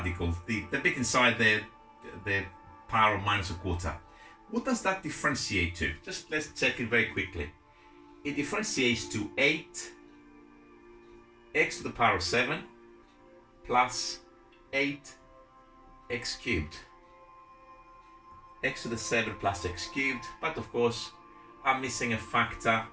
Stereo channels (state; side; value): identical; both; correlation 1.00